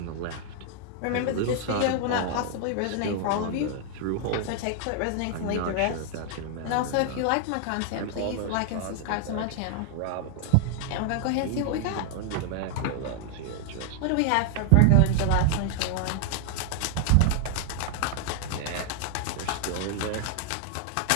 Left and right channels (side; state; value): both; different; correlation 0.00